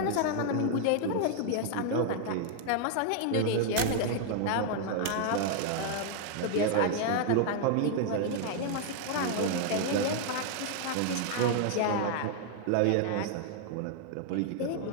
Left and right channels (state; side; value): different; both; correlation 0.00